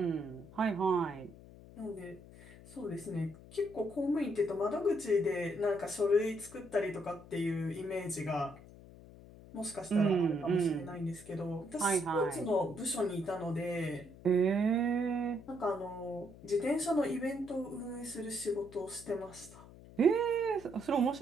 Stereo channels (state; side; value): noise; left; hum, 19 dB below the sound